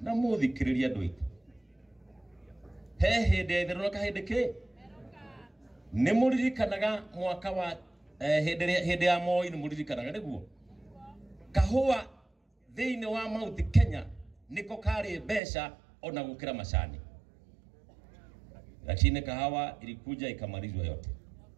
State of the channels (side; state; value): left; drops out; at 15.4 s